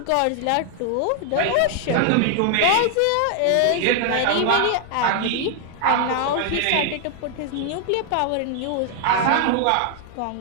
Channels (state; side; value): different; both; correlation 0.00